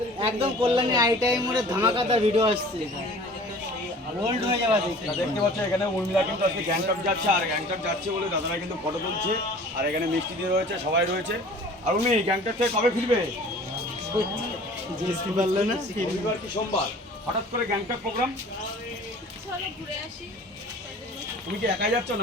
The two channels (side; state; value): both; normal; correlation 0.46